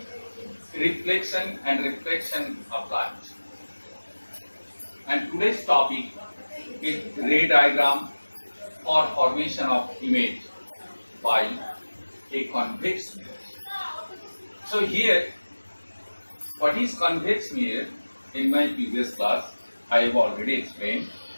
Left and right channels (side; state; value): both; inverted; correlation -1.00